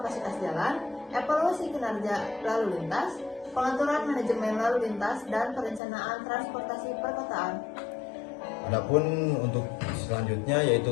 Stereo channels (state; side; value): drops out; right; at 5.8 s